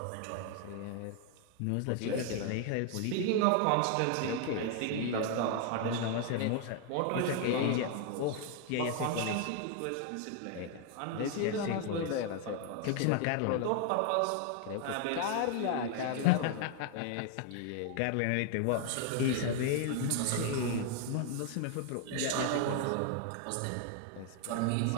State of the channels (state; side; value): different; both; correlation 0.00